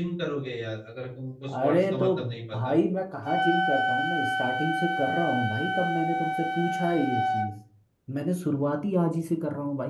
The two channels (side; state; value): both; identical; correlation 1.00